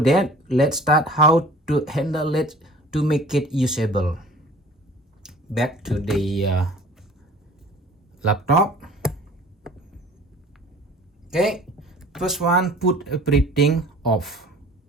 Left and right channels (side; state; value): both; normal; correlation 0.47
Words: let's start how to handle it to make it usable. Back to the laptop. Okay, first one, put everything off.